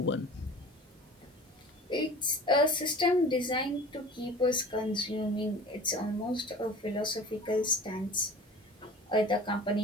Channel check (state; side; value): normal; both; correlation 0.41